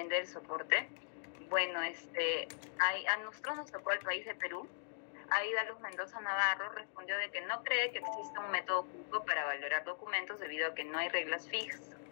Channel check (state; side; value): silent; right; digital silence